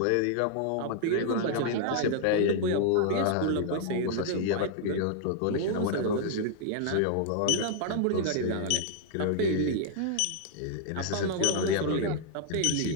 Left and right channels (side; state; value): both; different; correlation -0.01